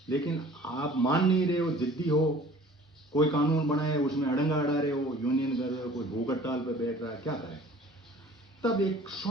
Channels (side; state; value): both; normal; correlation 0.49